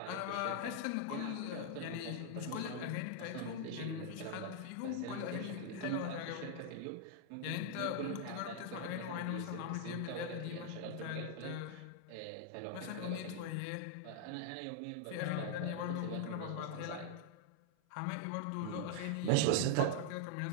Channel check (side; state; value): both; different; correlation 0.00